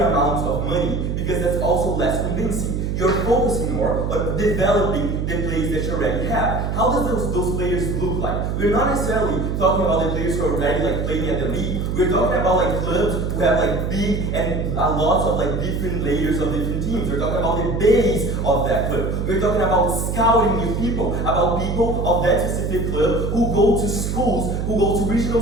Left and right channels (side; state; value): right; noise; hum, 1 dB below the sound